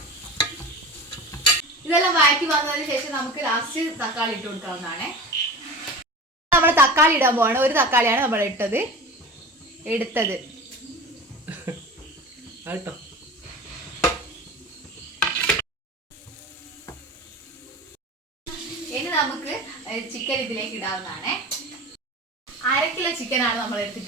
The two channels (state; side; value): normal; both; correlation 0.33